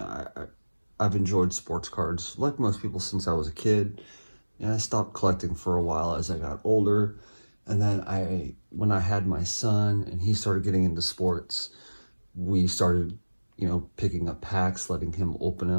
I've enjoyed sports cards like most people since I was a kid. I stopped collecting for a while as I got older. And then when I had my son and he started getting into sports, we started, picking up packs, letting him open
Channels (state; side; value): inverted; both; correlation -1.00